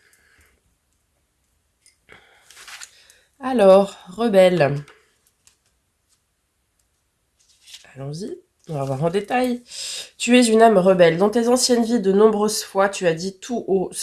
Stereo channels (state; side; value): identical; both; correlation 1.00